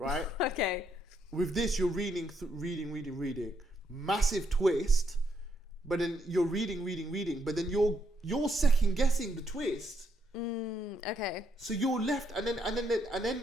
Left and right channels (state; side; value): normal; both; correlation 0.76